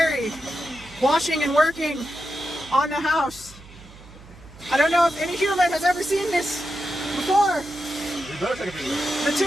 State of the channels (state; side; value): noise; right; hum, 20 dB below the sound